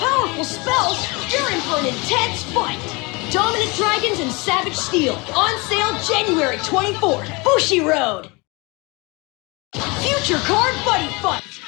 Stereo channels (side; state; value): right; quieter; 26.8 dB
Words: spells, you're in for an intense fight! Dominant Dragons and Savage Steel, on sale January 24th, Bushi Road! Future Card Buddyfight!